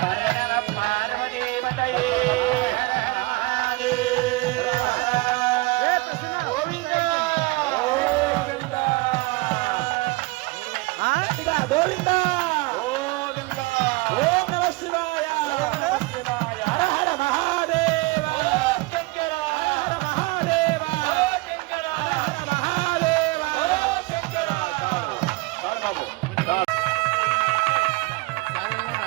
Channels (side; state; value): left; quieter; 23.1 dB